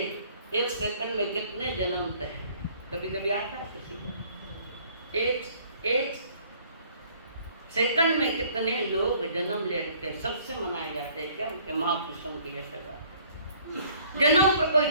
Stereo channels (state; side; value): inverted; both; correlation -0.58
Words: एक सेकंड में कितने जन्मते हैं, कभी कभी आता है किसी को। एक सेकंड में कितने लोग जन्म ले रखे, सबसे मनाए जाते हैं क्या उनके महापुरुषों की यशोगाथा। जन्म पर कोई